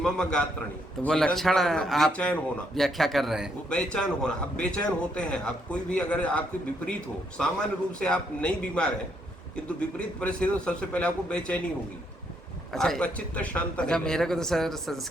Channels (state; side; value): normal; both; correlation 0.74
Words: गात्रणी, तो वो लक्षण आप बेचैन होना व्याख्या कर रहे हैं। वो बेचैन होना। अब बेचैन होते हैं आप, कोई भी अगर आपके विपरीत हो, सामान्य रूप से आप नहीं बीमार हैं किंतु विपरीत परिस्थिति तो सबसे पहले आपको बेचैनी होगी। अच्छा, आपका चित्त शांत अच्छा, मेरे को तो सर